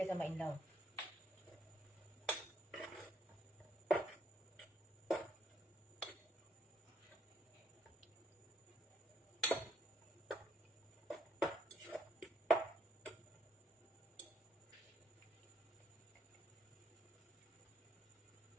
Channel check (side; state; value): both; normal; correlation 0.69